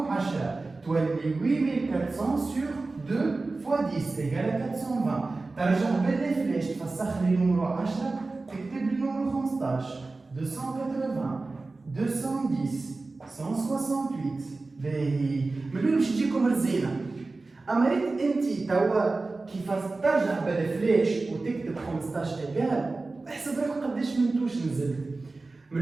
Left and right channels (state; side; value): quieter; left; 3.5 dB